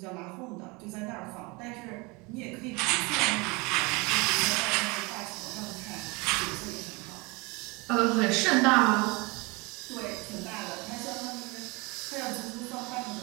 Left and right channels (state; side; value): quieter; left; 26.6 dB